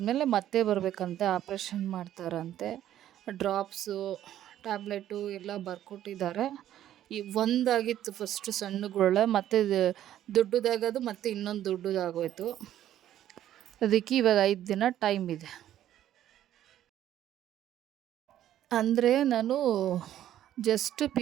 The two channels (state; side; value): quieter; left; 11.8 dB